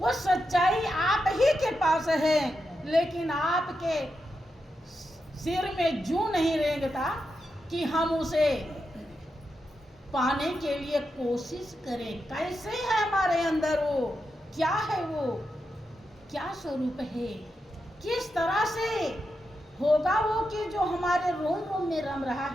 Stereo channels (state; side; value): normal; both; correlation 0.87